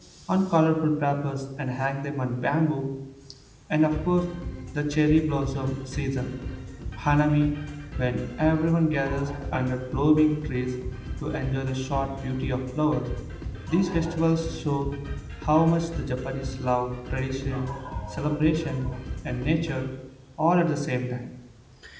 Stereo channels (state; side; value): identical; both; correlation 1.00